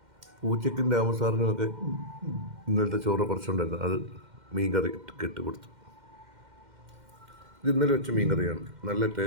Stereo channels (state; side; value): late; left; 2.1 ms